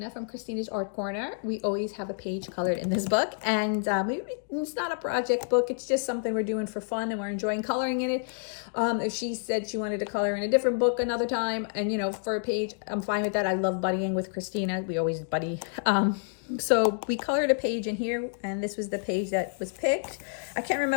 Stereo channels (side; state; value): right; silent; digital silence